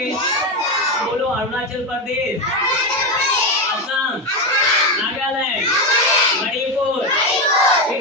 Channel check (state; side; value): normal; both; correlation 0.13